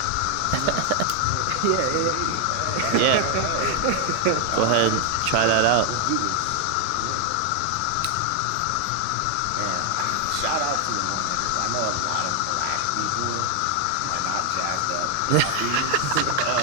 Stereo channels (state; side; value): different; both; correlation 0.00